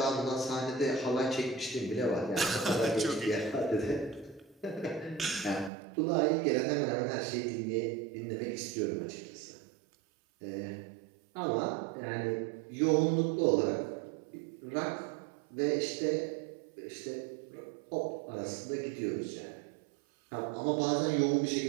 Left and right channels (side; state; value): left; drops out; at 5.7 s